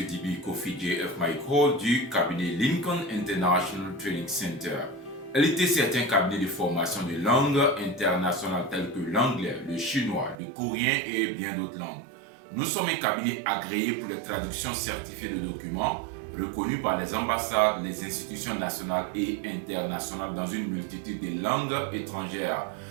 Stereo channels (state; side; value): drops out; left; at 10.4 s